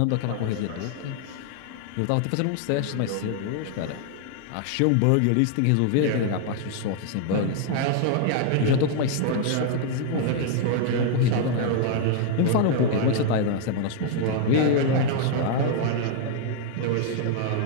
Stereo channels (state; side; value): different; both; correlation 0.00